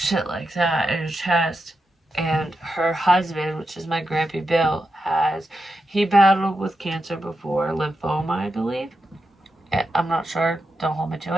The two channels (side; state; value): both; normal; correlation 0.87